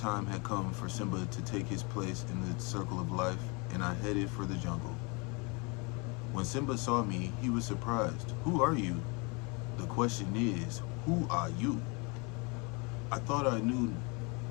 had come for Simba to take his place in the circle of life, and I headed for the jungle. When Simba saw me, he was surprised. Who are you? The question is, who are you? I thought I knew.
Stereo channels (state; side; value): quieter; right; 30.2 dB